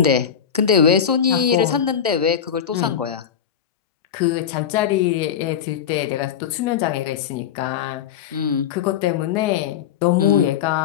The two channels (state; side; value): quieter; right; 8.4 dB